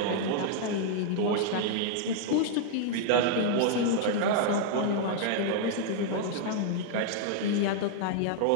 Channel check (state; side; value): different; both; correlation -0.01